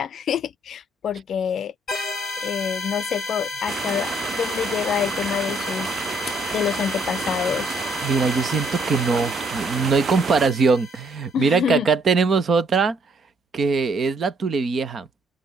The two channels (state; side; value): normal; both; correlation 0.67